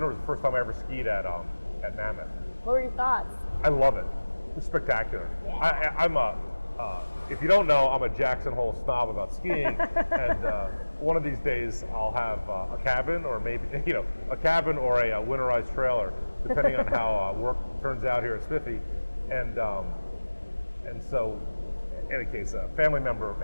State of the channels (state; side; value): inverted; both; correlation -1.00